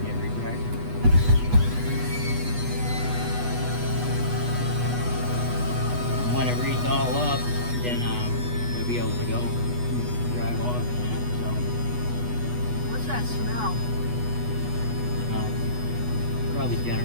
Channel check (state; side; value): late; left; 8.2 ms